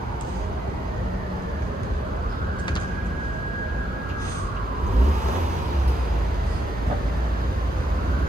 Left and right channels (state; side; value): normal; both; correlation 0.78